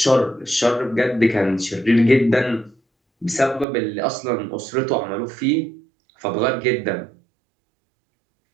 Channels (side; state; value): left; drops out; at 3.7 s